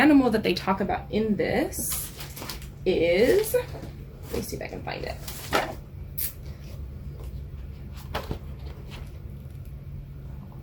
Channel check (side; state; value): both; identical; correlation 1.00